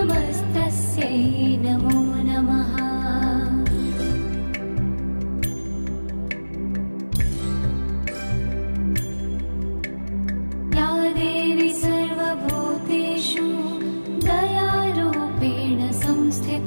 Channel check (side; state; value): both; inverted; correlation -1.00